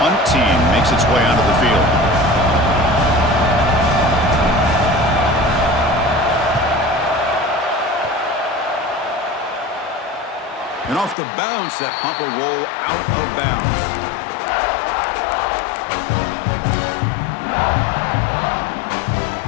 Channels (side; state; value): right; drops out; at 11.2 s